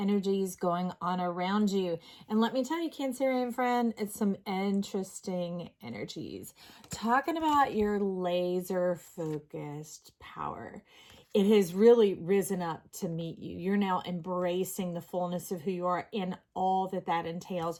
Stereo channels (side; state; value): both; identical; correlation 1.00